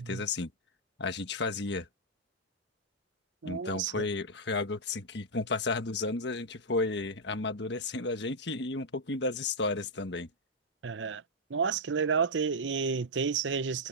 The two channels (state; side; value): normal; both; correlation -0.04